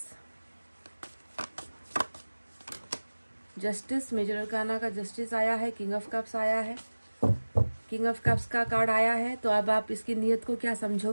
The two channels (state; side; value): inverted; both; correlation -1.00